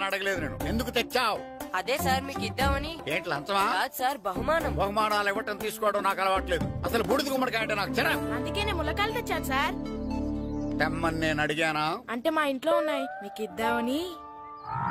అడగలేదు నేను. ఎందుకు తెచ్చావు? అదే సార్ మీకు ఇద్దామని. ఏంటి లంచమా? సార్, బహుమానం. బహుమానాలు ఇవ్వటం తీసుకోవడం నాకు అలవాట్లేదు. అసలు బూడిద గుమ్మడికాయ అంటే నాకు చిరా. అందుకే నేను ములకాయలు తెచ్చాను సార్. తెమ్మని నేను అడిగానా? అంటే మా ఇంట్లో ఉన్నాయి, మీకు ఇద్దామని.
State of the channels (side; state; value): both; identical; correlation 1.00